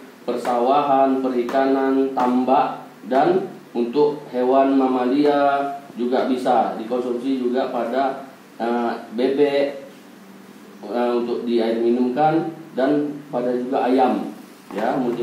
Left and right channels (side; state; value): both; identical; correlation 1.00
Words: persawahan, perikanan, tambak, dan untuk hewan mamalia juga bisa dikonsumsi juga pada bebek untuk di air minumkan, dan pada juga ayam ya,